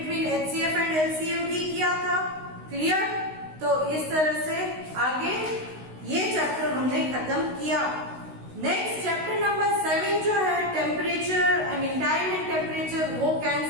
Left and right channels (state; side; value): late; left; 16 ms